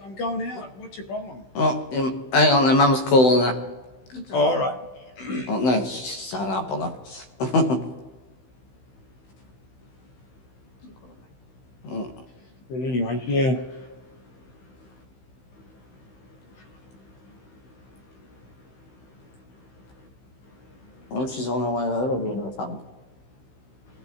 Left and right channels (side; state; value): right; late; 16 ms